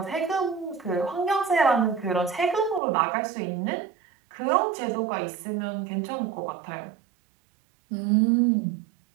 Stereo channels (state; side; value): drops out; left; at 2.8 s